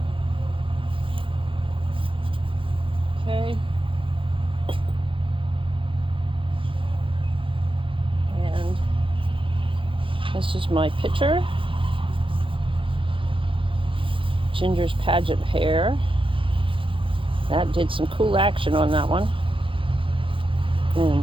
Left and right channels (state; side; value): late; left; 0.25 ms